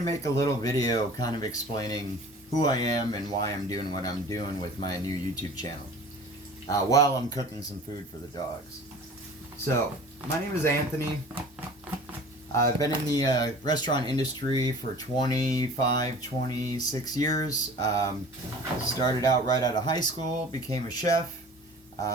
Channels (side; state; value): both; normal; correlation 0.43